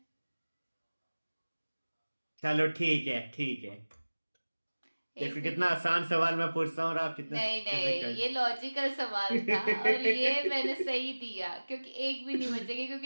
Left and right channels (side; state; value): both; inverted; correlation -1.00